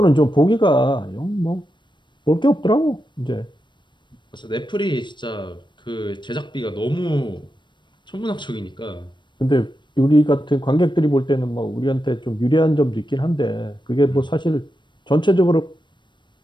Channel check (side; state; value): right; late; 0.22 ms